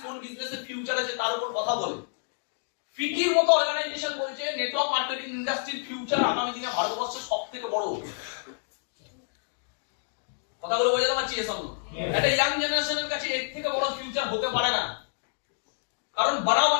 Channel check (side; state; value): right; silent; digital silence